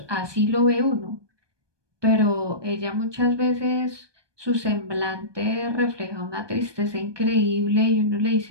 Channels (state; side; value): late; left; 1.2 ms